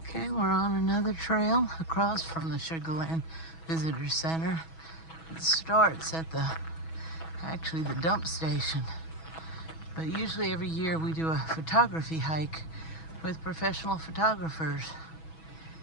Okay, we're on another trail across from the Sugarland Visitor Center. It starts at actually the dump station. But usually every year we do a photography hike with professional photographers.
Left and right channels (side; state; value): right; late; 6.1 ms